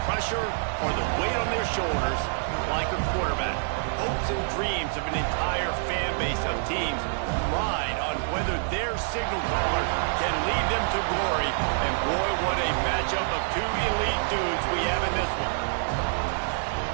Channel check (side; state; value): left; silent; 58 dB below the other